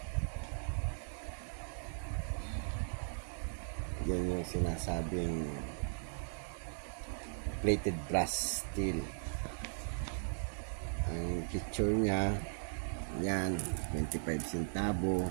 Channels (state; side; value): silent; left; digital silence